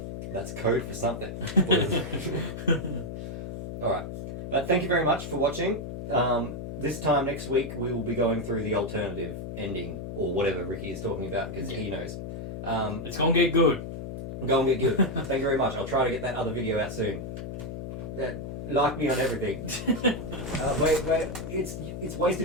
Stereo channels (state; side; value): noise; left; hum, 7 dB below the sound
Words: That's code for something. Alright. But thank you very much for watching. This time next week we will be going through the alternative ending, or whatever Ricky is talking about, because he knows. It's gonna get good. Go and get good. Thank you very much. I'll try to get that other video out soon. Like me on everything. Wait. It's